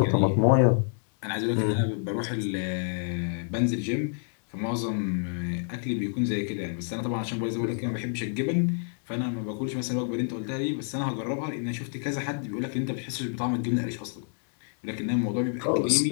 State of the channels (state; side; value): silent; right; 59 dB below the other